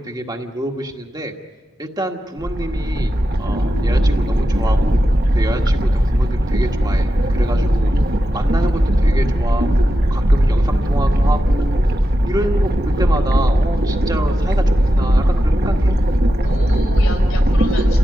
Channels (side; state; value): both; normal; correlation 0.90